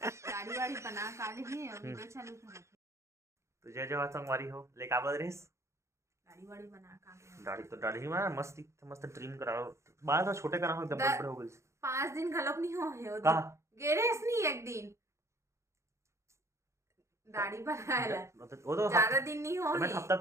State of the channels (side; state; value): left; late; 0.14 ms